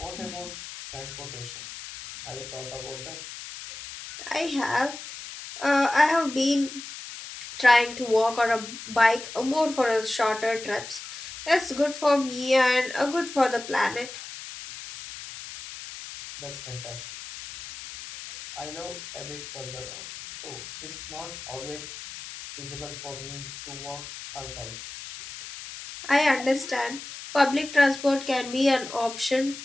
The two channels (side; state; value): left; noise; hiss, 12 dB below the sound